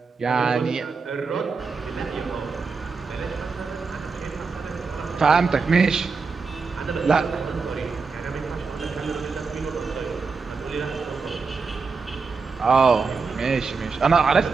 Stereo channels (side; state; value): left; quieter; 4.7 dB